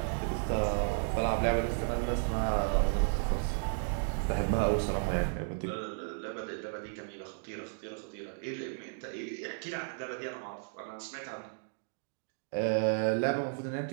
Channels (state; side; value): silent; left; digital silence